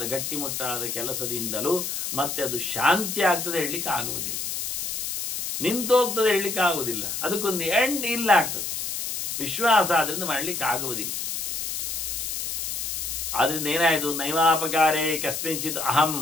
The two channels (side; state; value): left; noise; hiss, 3 dB below the sound